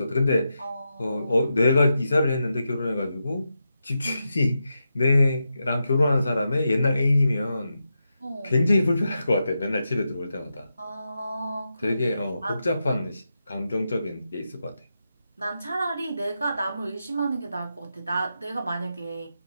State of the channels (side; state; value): both; inverted; correlation -0.87